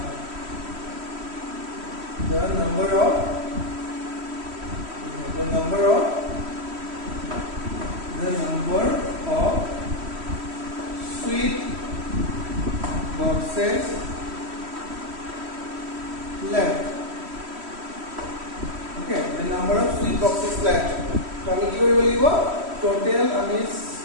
The number of sweet boxes left. Okay, the number of sweet boxes left. So আমি কি কৰিব লাগিব? Total আমি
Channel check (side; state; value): left; late; 3.1 ms